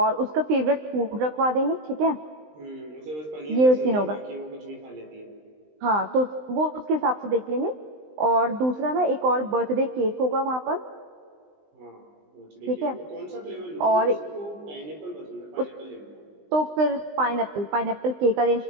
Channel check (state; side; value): late; left; 20 ms